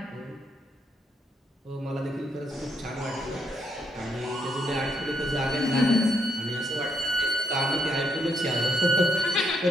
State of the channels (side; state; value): both; normal; correlation 0.75